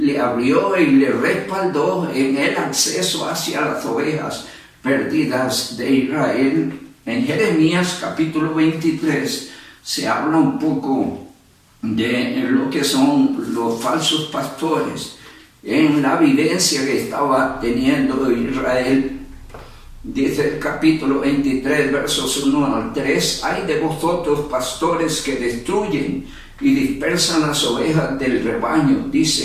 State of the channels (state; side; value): identical; both; correlation 1.00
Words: abrió y le respaldó en el acceso hacia las ovejas perdidas de Israel. En Jeremías capítulo 23 se habla un poco de lo que son los falsos pastores en la vivencia que estaba teniendo Israel. Dice el capítulo 23, versos 1 al 3, hay de vosotros pastores que destruyen y dispersan las ovejas del rebaño,